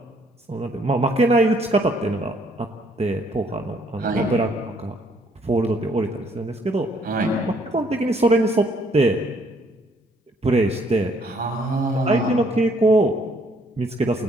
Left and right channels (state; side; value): normal; both; correlation 0.66